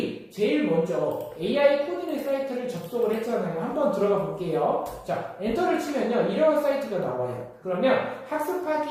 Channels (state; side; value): identical; both; correlation 1.00